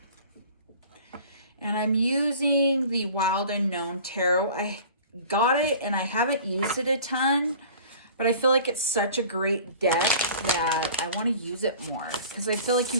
And I'm using the Wild Unknown Tarot. I got it and I haven't used it a ton, but I feel like it's such a great deck that I want to use it more, because I feel like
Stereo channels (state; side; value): inverted; both; correlation -0.44